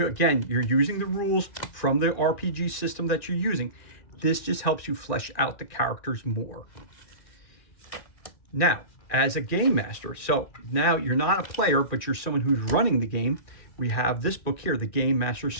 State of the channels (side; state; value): right; late; 1.9 ms